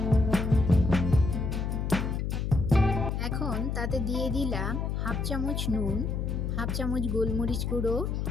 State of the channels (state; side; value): noise; left; hum, 1 dB below the sound